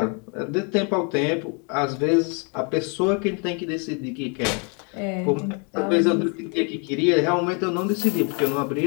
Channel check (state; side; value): quieter; right; 36.0 dB